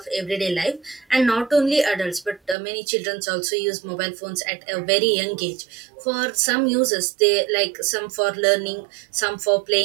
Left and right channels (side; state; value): left; drops out; at 2.6 s